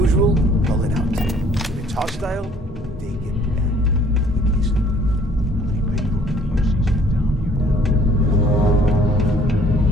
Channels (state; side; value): normal; both; correlation 0.58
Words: Pull it out. If it's hostile, take it back.